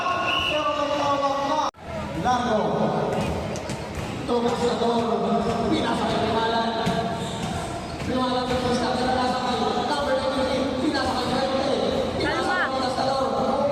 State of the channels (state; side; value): identical; both; correlation 1.00